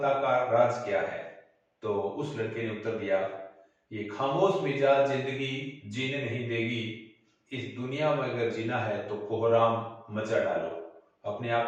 का राज क्या है। तो उस लड़के ने उत्तर दिया, ये खामोश मिजाज जिंदगी जीने नहीं देगी, इस दुनिया में अगर जीना है तो कोहराम मचा डालो। अपने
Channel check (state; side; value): identical; both; correlation 1.00